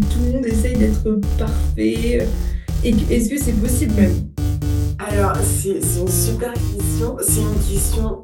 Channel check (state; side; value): identical; both; correlation 1.00